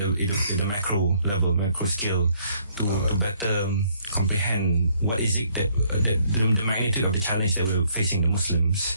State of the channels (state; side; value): inverted; both; correlation -0.67